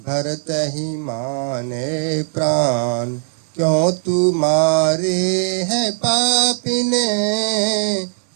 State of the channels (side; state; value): left; silent; digital silence